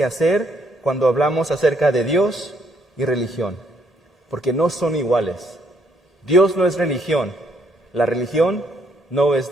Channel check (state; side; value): normal; both; correlation 0.70